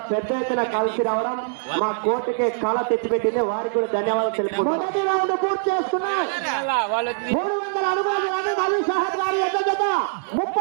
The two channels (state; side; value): silent; left; digital silence